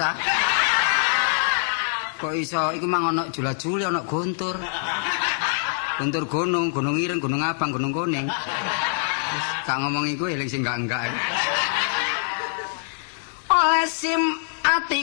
Kok iso iku mang ana jula-juli ana gontur. Gontur gunung, gunung ireng, gunung abang, gunung kuning. Gak ngomong iku eling sing enggak. Oleh sim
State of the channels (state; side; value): silent; right; digital silence